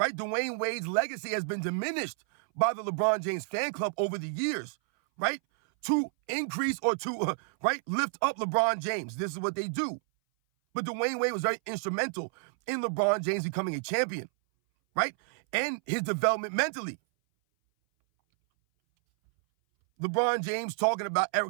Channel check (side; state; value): left; silent; 58 dB below the other